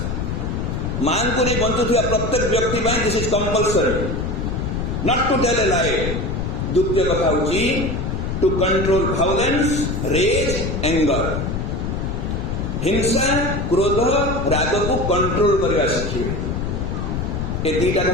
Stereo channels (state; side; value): noise; left; rumble, 2 dB below the sound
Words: मां को नहीं बंचुवा प्रत्येक व्यक्ति this is compulsory not to tell a lie द्वितीय कथा हूँ to control violence rage anger हिंसा क्रोध राग को कंट्रोल करने शिखे ए दीटा